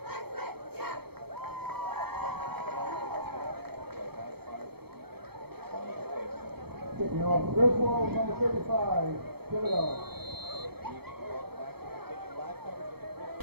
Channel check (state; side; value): late; left; 0.96 ms